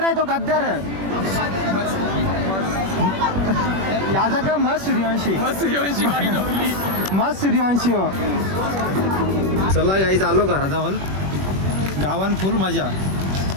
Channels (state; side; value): late; left; 21 ms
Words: तो गद्दार याचा का मस्त सूर्यवंशी मस्त सूर्यवंशी हो चला गाईज आलो घराजवळ गावान फुल मजा